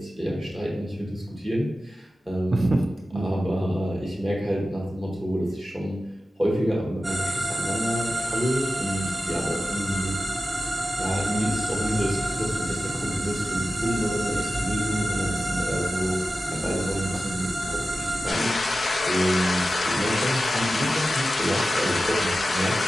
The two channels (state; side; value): normal; both; correlation 0.93